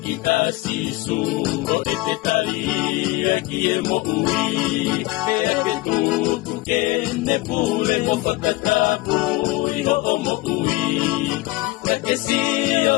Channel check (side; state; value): right; quieter; 20.2 dB